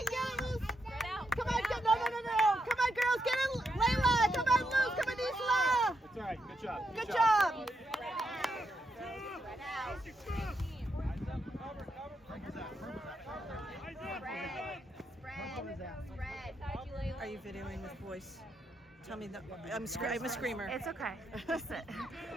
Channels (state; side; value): normal; both; correlation 0.81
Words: Get loose. Come on, no. Come on, girls. Get it. Layla. Come on, Luce. Come on, Isla. That's all right. Good job. Good job. Are you videoing this voice? Tell me that I'm a screamer. It's okay. Just sit. Come